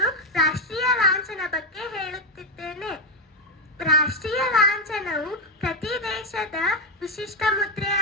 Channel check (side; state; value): both; normal; correlation 0.07